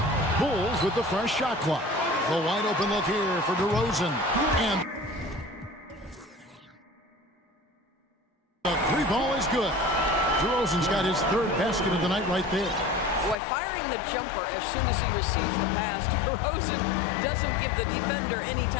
Bulls with the fresh shot clock. The wide open look here for DeRozan. And the 3 ball is good. DeRozan's got his 3rd basket of the night right there. Boy, firing the jumper as soon as he receives the pass, DeRozan doesn't give the defender any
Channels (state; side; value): drops out; right; at 13.4 s